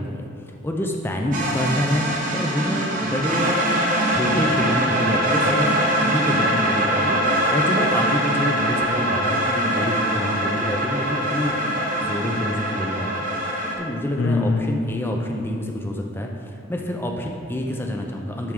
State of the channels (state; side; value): normal; both; correlation 0.34